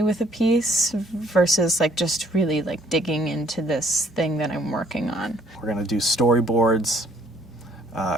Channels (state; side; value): normal; both; correlation 0.61